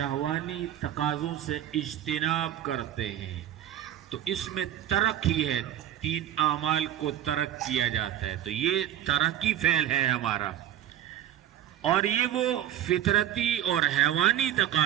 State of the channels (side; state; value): left; quieter; 11.8 dB